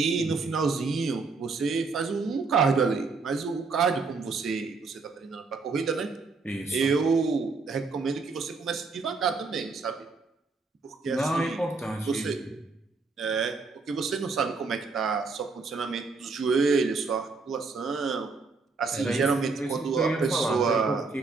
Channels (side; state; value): left; quieter; 4.2 dB